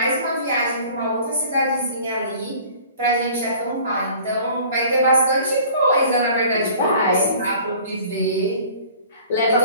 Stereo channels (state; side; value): inverted; both; correlation -0.48